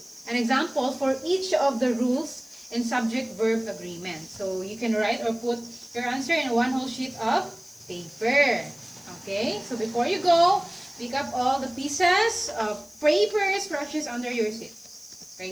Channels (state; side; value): noise; left; hiss, 24 dB below the sound